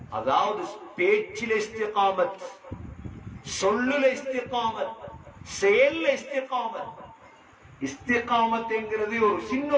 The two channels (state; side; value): identical; both; correlation 1.00